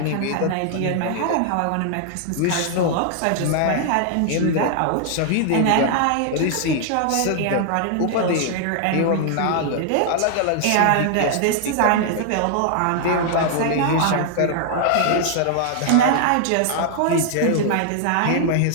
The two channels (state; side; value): different; both; correlation 0.00